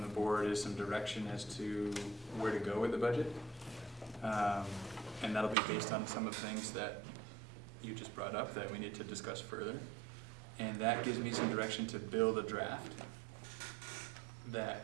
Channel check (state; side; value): drops out; left; at 5.6 s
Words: the board is some direction as to where to go with the budget. And that'll be based on some of the things that you just brought up that we need to discuss further. And that gives me some direction to build a draft